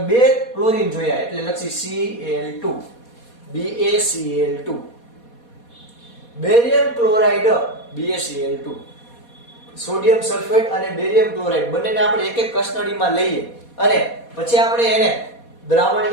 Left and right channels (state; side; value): late; right; 4.2 ms